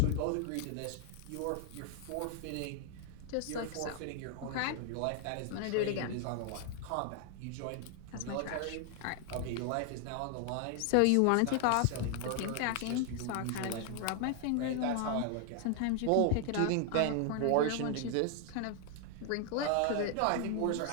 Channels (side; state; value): both; different; correlation 0.00